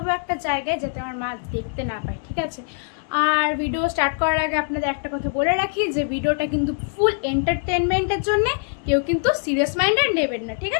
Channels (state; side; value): silent; right; digital silence